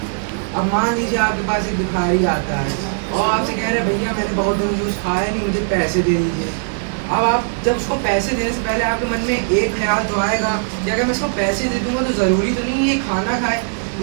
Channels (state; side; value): silent; left; digital silence